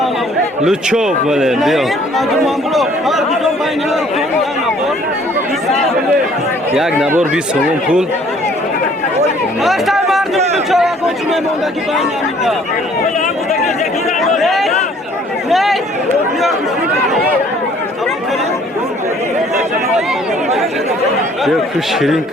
لوچو بله بیا یک نبار 20 سوم پول بیا کو شیرین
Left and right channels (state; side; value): normal; both; correlation 0.58